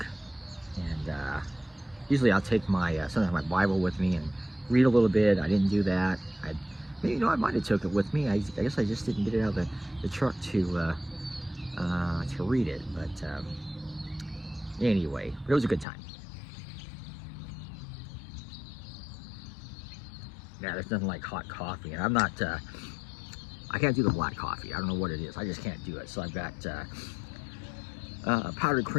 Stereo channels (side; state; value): right; drops out; at 15.9 s